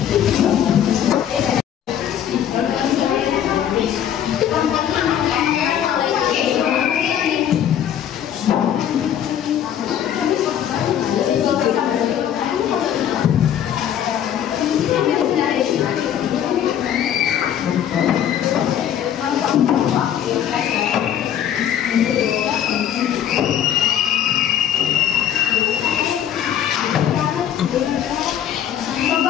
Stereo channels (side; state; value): right; quieter; 9.9 dB